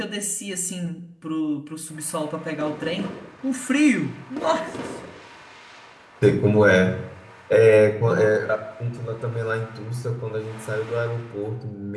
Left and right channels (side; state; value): both; identical; correlation 1.00